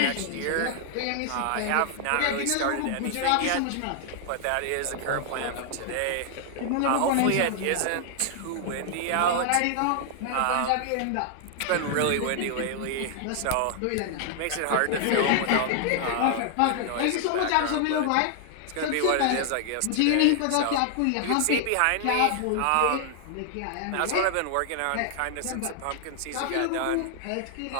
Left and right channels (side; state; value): both; different; correlation 0.00